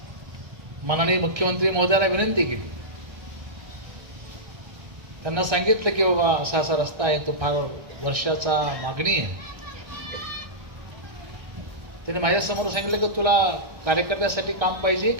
माननीय मुख्यमंत्री महोदयाला विनंती केली, त्यांना सांगितलं की बाबा असा असा रस्ता आहे, तो फार वर्षाचा मागणी आहे. त्याने माझ्यासमोर सांगितलं की तुला कार्यकर्त्यासाठी काम पाहिजे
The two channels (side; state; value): left; late; 1.6 ms